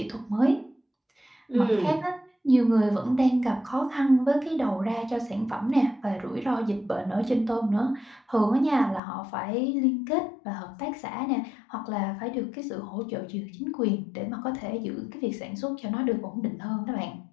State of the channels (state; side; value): drops out; right; at 9.0 s